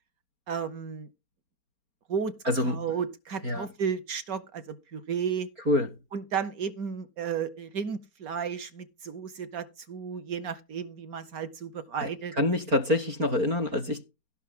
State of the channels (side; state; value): left; late; 4.3 ms